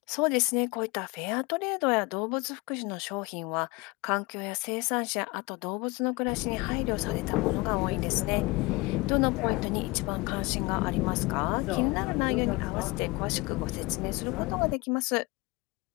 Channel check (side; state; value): right; quieter; 24.5 dB